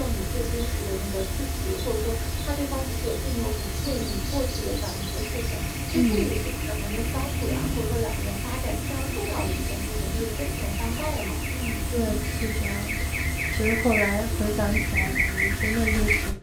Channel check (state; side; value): identical; both; correlation 1.00